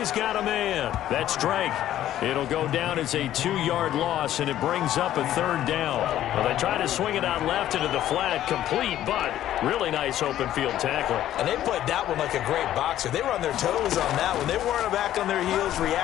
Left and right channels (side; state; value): right; quieter; 12.4 dB